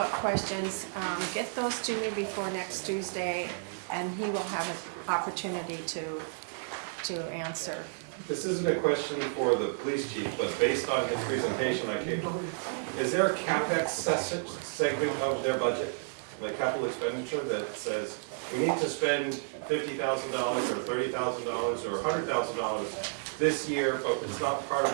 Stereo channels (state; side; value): silent; left; digital silence